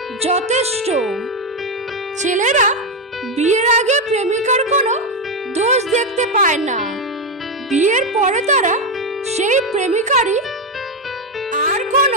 যথেষ্ট। ছেলেরা বিয়ের আগে প্রেমিকার কোনো দোষ দেখতে পায় না, বিয়ের পরে তারা সেই প্রেমিকারই আর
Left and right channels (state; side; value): normal; both; correlation 0.08